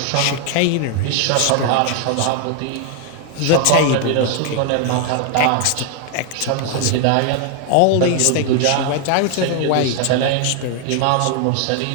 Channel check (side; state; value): both; different; correlation 0.00